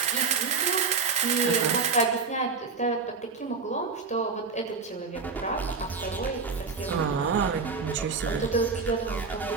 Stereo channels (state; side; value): quieter; left; 4.9 dB